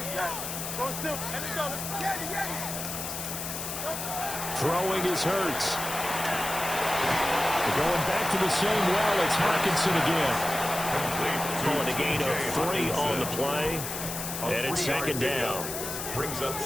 Throwing is Hurts. Going back to the same well, it's Hawkinson again. Going a gain of 3 on the play. And it's 2nd down. Brings up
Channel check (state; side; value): noise; left; hiss, 6 dB below the sound